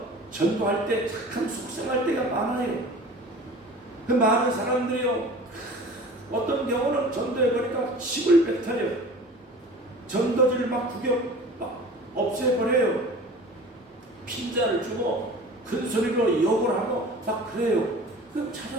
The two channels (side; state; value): both; normal; correlation 0.41